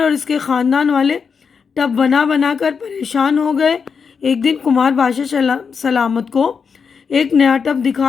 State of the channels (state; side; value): quieter; right; 6.0 dB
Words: اس کے خاندان والے ٹب بنا بنا کر پریشان ہو گئے۔ ایک دن کمار بادشاہ سلامت کو ایک نیا ٹب